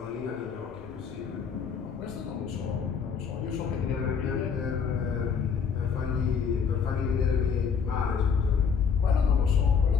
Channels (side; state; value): right; quieter; 6.4 dB